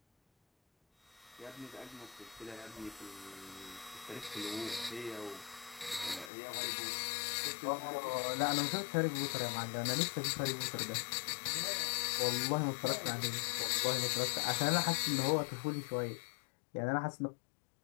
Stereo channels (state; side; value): drops out; right; at 6.3 s